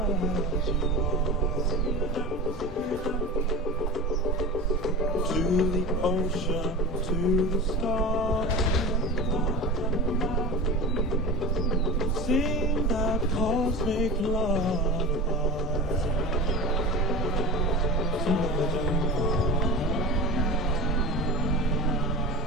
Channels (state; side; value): normal; both; correlation 0.30